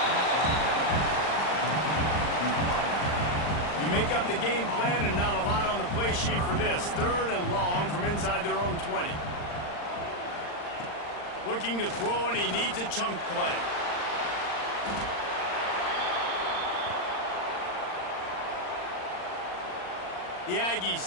You make up the game plan, and not a lot on the play sheet for this. 3rd and long from inside their own 20. Looking to throw, and he needs a chunk play. The Aggies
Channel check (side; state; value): right; late; 39 ms